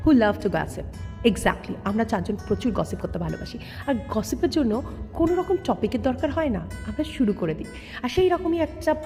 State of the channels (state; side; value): identical; both; correlation 1.00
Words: who love to gossip. Exactly, আমরা চারজন প্রচুর gossip করতে ভালোবাসি, আর গসিপের জন্য কোনো রকম টপিকের দরকার হয় না, আমরা শুরু করে দিই। আর সেই রকমই একটা